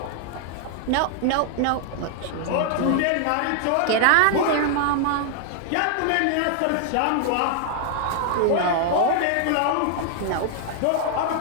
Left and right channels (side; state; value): both; different; correlation 0.00